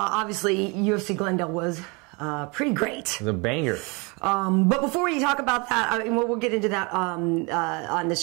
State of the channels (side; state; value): left; quieter; 29.4 dB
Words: UFC Glendale was pretty great. It was a banger. But before we talk about that, I mean, we'll get into that on